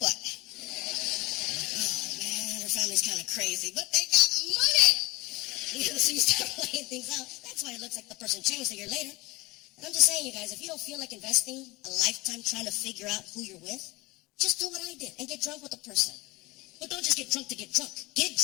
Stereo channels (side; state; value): right; quieter; 22.3 dB